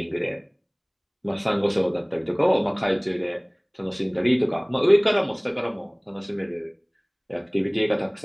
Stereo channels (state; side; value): identical; both; correlation 1.00